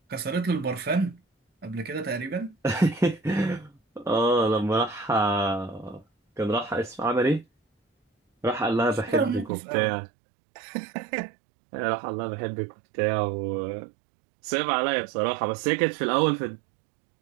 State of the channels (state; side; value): drops out; left; at 9.5 s